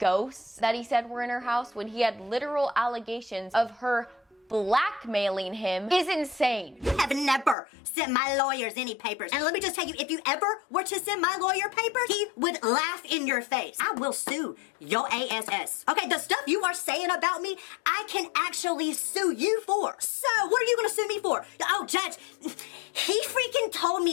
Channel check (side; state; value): right; drops out; at 7.6 s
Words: that he said were in her house when he had literal allegations of her blackmailing him is insane. You have never sent my lawyers any papers. And let me just tell you, if you ever were to send my lawyer papers, he would laugh in your face. I will sue your ass. Okay, the stuff you are saying about me, I can actually sue you for. So, what are you gonna sue me for? Oh, Judge, he freaking told